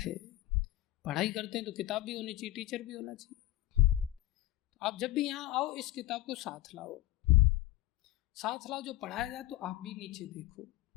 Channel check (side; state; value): right; quieter; 16.0 dB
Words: पढ़ाई करते हैं तो किताब भी होनी चाहिए, टीचर भी होना चाहिए। तो आप जब भी यहाँ आओ इस किताब को साथ लाओ, साथ लाओ, जो पढ़ाया जाए तो आप भी नीचे देखो